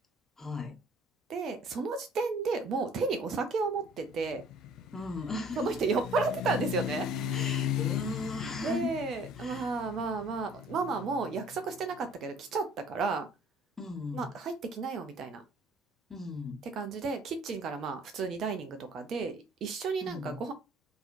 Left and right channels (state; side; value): normal; both; correlation 0.53